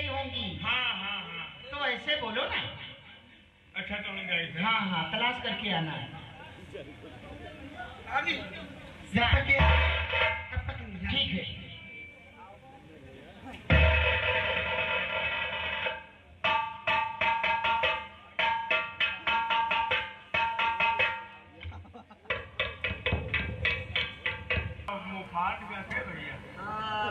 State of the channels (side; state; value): both; identical; correlation 1.00